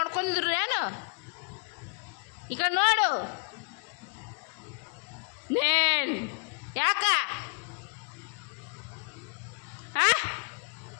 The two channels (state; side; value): quieter; right; 39.2 dB